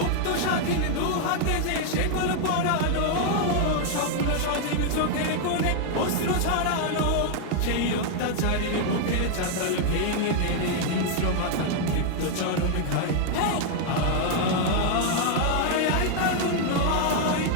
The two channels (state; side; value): different; both; correlation 0.00